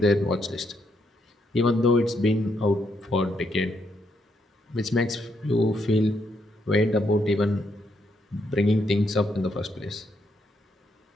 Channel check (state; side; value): normal; both; correlation 0.77